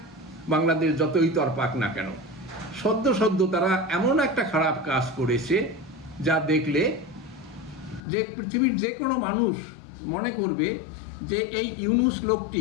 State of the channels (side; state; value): right; drops out; at 8.1 s